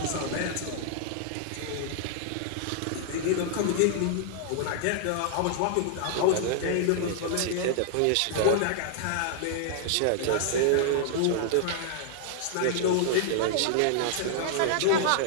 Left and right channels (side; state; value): both; different; correlation -0.01